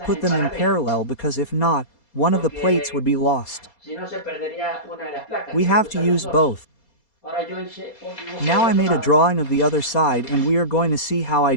them in parallel, because if not, one of the plates would be lost. We have to use both. Now I made a drawing of the other side and we are going to see how I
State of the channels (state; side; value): late; right; 4.3 ms